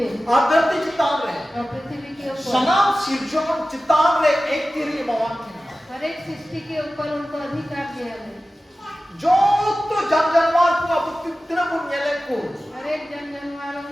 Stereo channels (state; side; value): normal; both; correlation 0.95